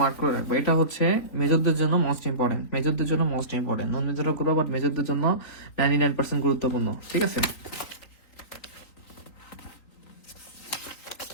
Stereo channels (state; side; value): late; right; 3.9 ms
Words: করে রাখবো। এটা হচ্ছে মেজরদের জন্য মোস্ট ইম্পর্টেন্ট, মেজরদের জন্য মোস্ট ইম্পর্টেন্ট, নন মেজরও করবো বাট মেজরদের জন্য 99% গুরুত্বপূর্ণ, ঠিক আছে?